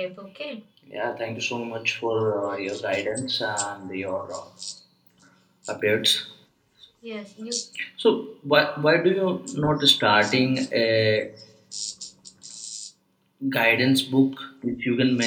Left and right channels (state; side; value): identical; both; correlation 1.00